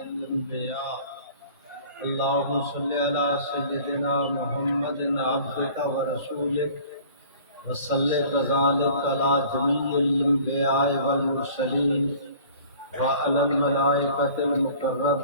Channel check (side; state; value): both; inverted; correlation -0.49